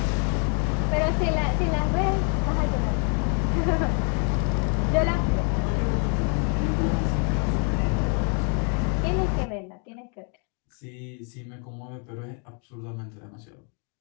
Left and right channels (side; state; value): right; quieter; 39.6 dB